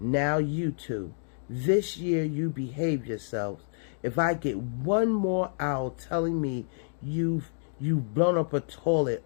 you two. This year you behave yourselves. If I get one more owl telling me you've blown up a toilet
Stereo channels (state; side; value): silent; right; digital silence